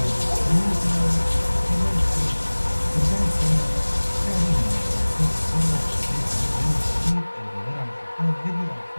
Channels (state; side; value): inverted; both; correlation -1.00